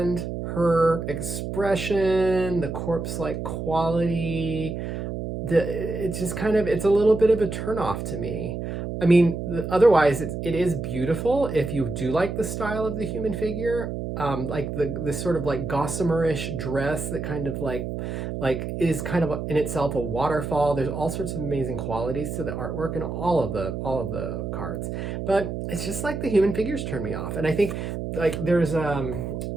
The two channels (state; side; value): noise; right; hum, 5 dB below the sound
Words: her expression, the corpse-like quality. It's just kind of, it's a little bit of a turnoff to me. I mean, otherwise it is beautiful if you do like the style of the human figure, like the sort of like gossamer-ish dress that kind of like is kind of in itself a waterfall. There's all sorts of amazing qualities to the artwork and all of the cards, but it's just like the human figures turn me off. And I think like there's